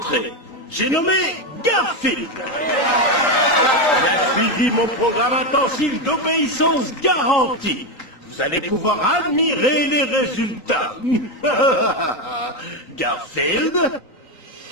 J'ai nommé Garfield. Il a suivi mon programme intensif d'obéissance garantie. Vous allez pouvoir admirer les résultats. Garfield?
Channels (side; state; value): right; late; 3.9 ms